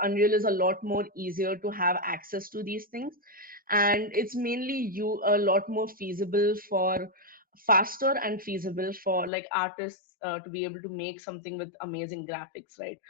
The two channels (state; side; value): drops out; right; at 9.3 s